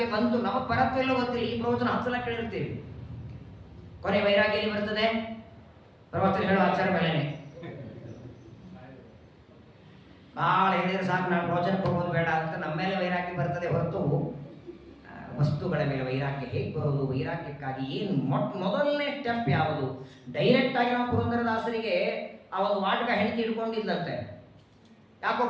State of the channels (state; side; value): identical; both; correlation 1.00